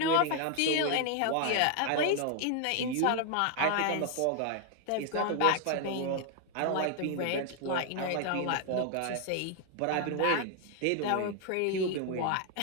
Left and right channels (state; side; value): different; both; correlation 0.00